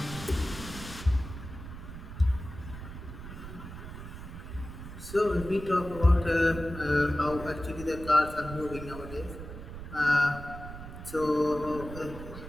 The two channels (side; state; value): right; noise; rumble, 11 dB below the sound